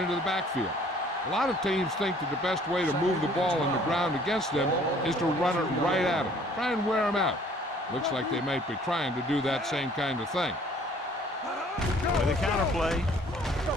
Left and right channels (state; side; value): normal; both; correlation 0.56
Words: the backfield. A lot of teams think that the best way to move the ball on the ground against them is to run it right at them. Try and wear them out. Looks like they might be trying to do that same kind of thing. With a counter play.